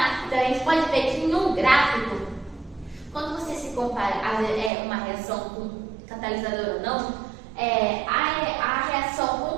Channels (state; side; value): drops out; left; at 4.7 s